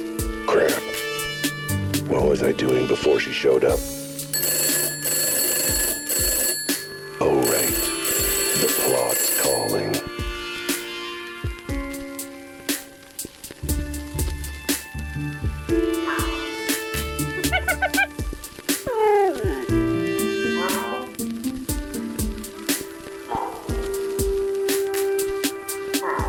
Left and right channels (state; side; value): identical; both; correlation 1.00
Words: crap. What was I doing before she showed up? Oh, right. The plot's calling.